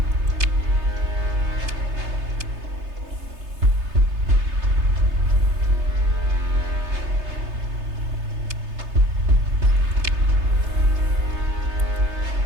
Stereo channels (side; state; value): left; late; 3.3 ms